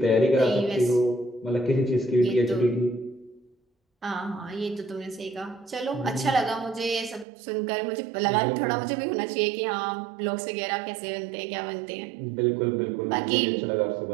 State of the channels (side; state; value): left; drops out; at 7.2 s